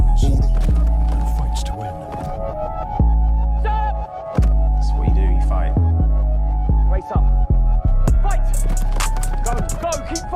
and fights to win. Stop! That's what you do, you fight. Race up. Fight! Go, keep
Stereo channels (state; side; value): identical; both; correlation 1.00